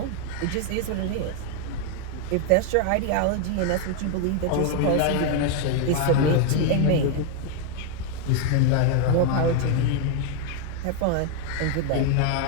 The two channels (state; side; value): different; both; correlation 0.01